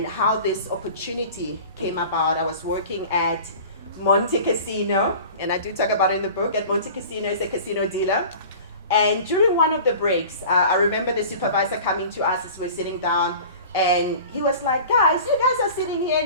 how this opportunity came about, I was working at Monte Casino, and I do talk about it in the book. At Monte Casino is a casino dealer. And during one of the breaks, I remember the supervisor coming to us as we're sitting down, and he was like, guys, you guys are sitting here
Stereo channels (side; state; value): both; inverted; correlation -0.41